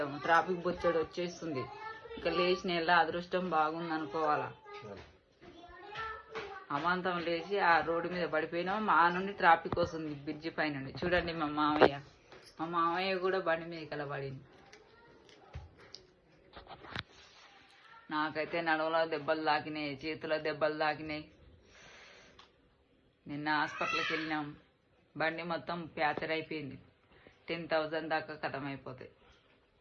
ట్రాఫిక్ బొచ్చడు వచ్చేస్తుంది. ఇక లేచిన ఎలా అదృష్టం బాగుంది అనుకోవాలా. అమాంతం లేచి ఆ రోడ్డు మీద పడిపోయినాం. మా నుండి ట్రాఫిక్ వస్తుంది బ్రిడ్జి పై నుండి. చూడండి మా మామయ్య కూడా బండి మీద కలబడింది. నాకైతే నడుములో దెబ్బలు తాకినాయి, చేతిలో దెబ్బలు తాకినాయి. నిన్న హాస్పిటల్కి వెళ్ళినాం. బండి మొత్తం ప్యాచర్ అయిపోయింది. 10,000 దాకా కథం అయిపోతాయి.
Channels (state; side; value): identical; both; correlation 1.00